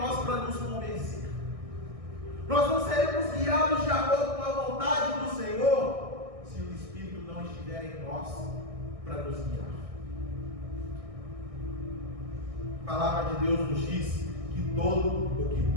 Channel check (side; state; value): left; late; 1.6 ms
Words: para nos convencer. Nós não seremos guiados de acordo com a vontade do Senhor se o Espírito não estiver em nós para nos guiar. A palavra de Deus nos diz que todo o que